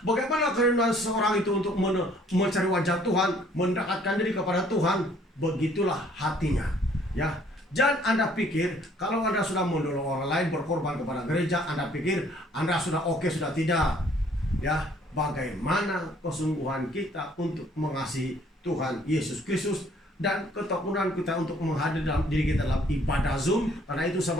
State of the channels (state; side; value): normal; both; correlation 0.61